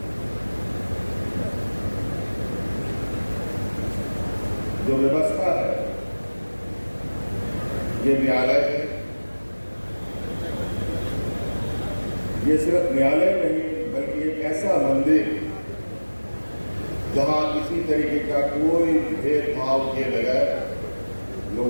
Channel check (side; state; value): both; inverted; correlation -1.00